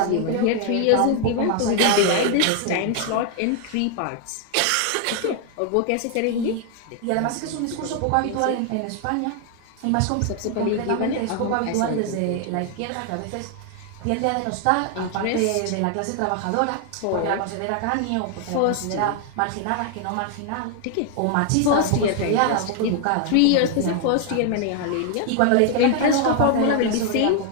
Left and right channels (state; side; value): different; both; correlation 0.00